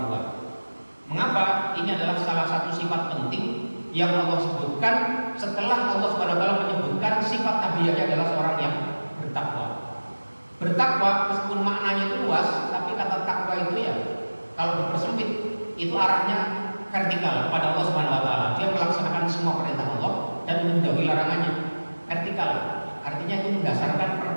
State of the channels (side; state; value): both; inverted; correlation -1.00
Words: tua. Mengapa? Ini adalah salah satu sifat penting yang Allah sebutkan setelah Allah Subhanahu wa taala menyebutkan sifat Nabi Yahya adalah seorang yang bertakwa. Bertakwa meskipun maknanya itu luas, tapi kata takwa itu ya kalau dipersempit itu arahnya vertikal kepada Allah Subhanahu wa taala. Dia melaksanakan semua perintah Allah dan menjauhi larangannya. Vertikal, artinya itu mendasarkan